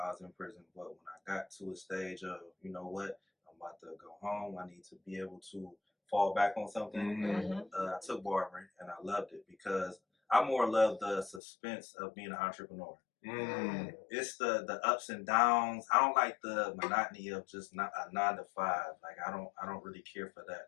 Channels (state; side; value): drops out; right; at 11.4 s